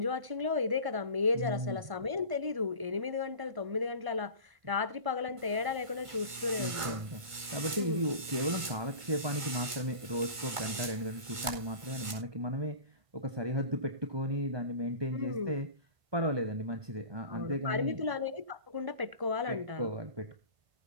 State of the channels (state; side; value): late; left; 1.4 ms